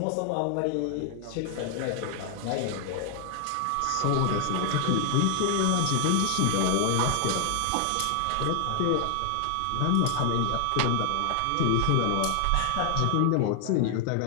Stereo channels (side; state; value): both; different; correlation 0.00